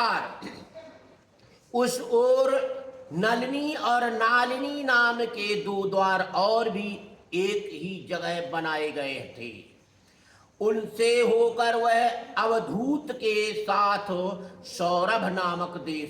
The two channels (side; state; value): both; identical; correlation 1.00